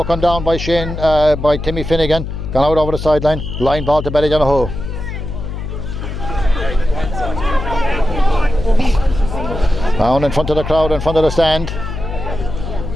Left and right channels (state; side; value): noise; left; hum, 6 dB below the sound